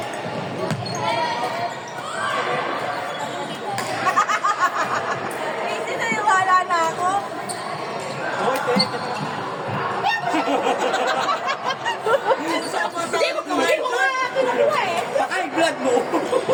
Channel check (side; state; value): both; identical; correlation 1.00